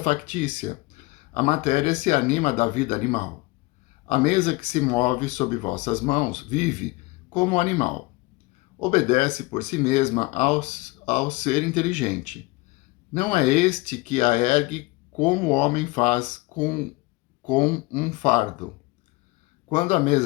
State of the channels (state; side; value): quieter; right; 22.5 dB